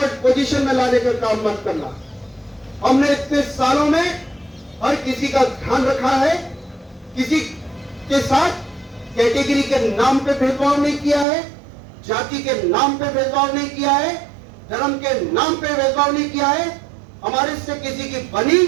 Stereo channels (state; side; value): drops out; left; at 11.2 s